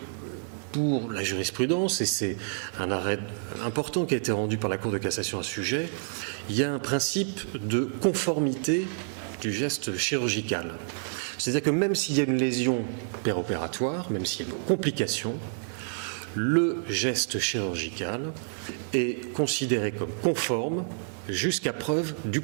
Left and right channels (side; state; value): left; silent; digital silence